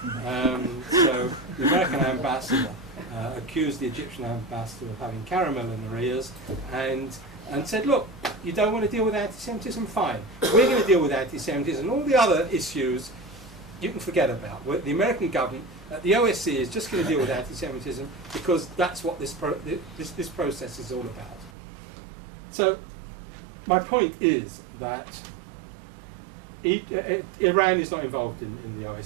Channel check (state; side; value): drops out; left; at 21.5 s